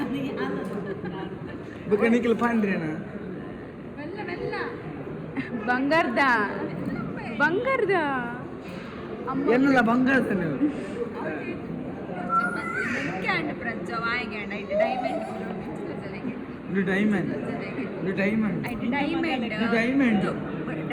ಬಕನಿಕಲ್ ಪಾಂಡ್ರೇನಾ ಬಂಗಾರದ ಬಂಗಾರದ ಎನ್ನಲ್ಲ ಬಂಗಾರದ ನೀವು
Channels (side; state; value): both; identical; correlation 1.00